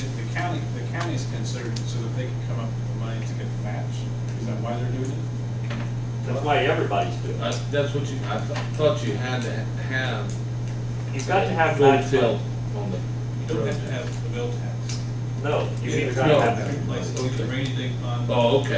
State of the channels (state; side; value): identical; both; correlation 1.00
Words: the county's considered so that they can come up with the money to get the match. Is that why they're doing it? That's why everybody's doing it. That's what I thought you had to have. You've got to have full match tilt money. on the. You don't have to have the bill tax. No, you either It's gotta No. have. two places, either rainy day fund. Oh,